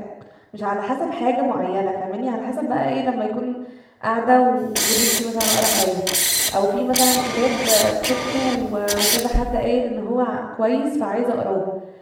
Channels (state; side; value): identical; both; correlation 1.00